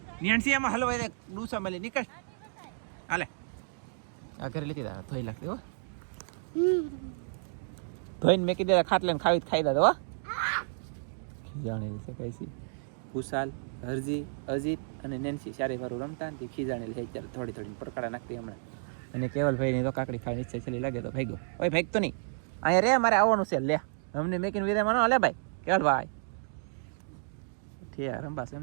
નેન્સી એમાં હલવાઈ દે ડૂસા મળી નીકળ હાલે આ ઘરે લીધી દા ધોઈ લાગતી હો ધોઈને મેકી દે ખાટલે ને ખાઈ દે હો ખીજાણેલી છે કઈસી કુશાલ હરજી અજીત અને નેન્સી ચારે વારું રમતા ને ખીજાણેલી છે ત્યારે થોડી થોડી પરકાડા નાખતી હમણાં અને કેવલભાઈ ની તો કાકડી ખાવાની ઈચ્છા છેલ્લી લાગે તો ભાગ્યો ઓય ભાગતો નહીં અહીંયા રે મારે આવવાનું છે લે અમને મેકીને વિદાય માનો લે ભાઈ કેવલભાઈ ઠીક રંબા છે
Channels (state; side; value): silent; left; digital silence